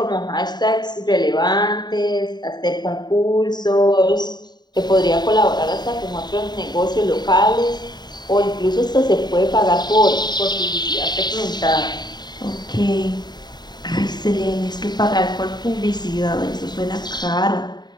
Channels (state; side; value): late; right; 0.20 ms